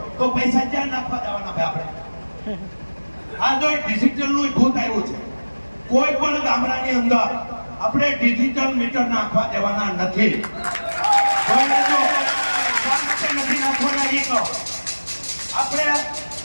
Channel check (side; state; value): both; inverted; correlation -1.00